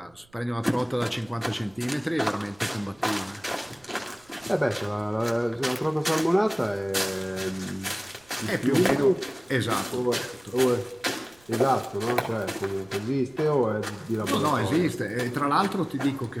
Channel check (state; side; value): noise; right; rumble, 30 dB below the sound